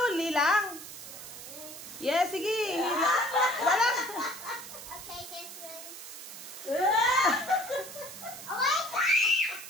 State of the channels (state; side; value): noise; right; hiss, 12 dB below the sound